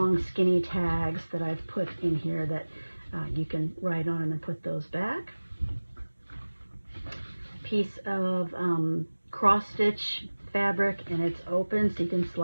skinny tags that I've put in here that you can write on and then put those back. Piece of cross stitch fabric, and it's open so you can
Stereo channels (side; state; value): both; inverted; correlation -1.00